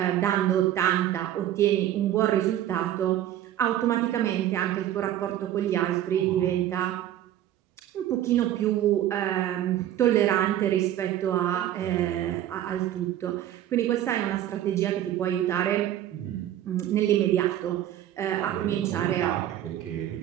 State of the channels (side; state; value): left; quieter; 12.1 dB